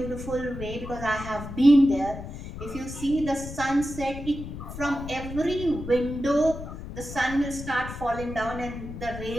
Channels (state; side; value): noise; left; rumble, 10 dB below the sound